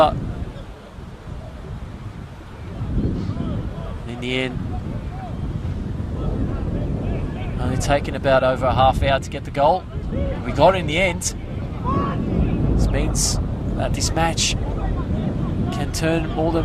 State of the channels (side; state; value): both; identical; correlation 1.00